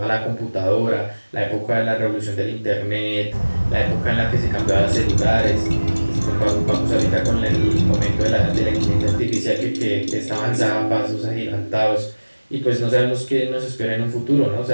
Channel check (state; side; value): inverted; both; correlation -1.00